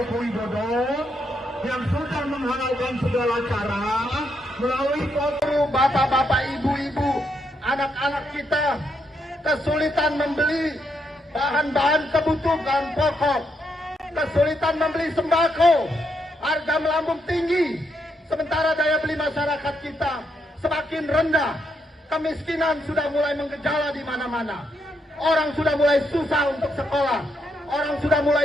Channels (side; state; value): both; normal; correlation 0.78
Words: Widodo yang sudah menghalalkan segala cara melalui foto bapak-bapak, ibu-ibu, anak-anak kita kesulitan membeli bahan-bahan kebutuhan pokok, kesulitan membeli sembako, harga melambung tinggi, sementara daya beli masyarakat kita semakin rendah, kemiskinan sudah mulai menggejala di mana-mana, orang sudah mulai susah untuk sekolah, orang sudah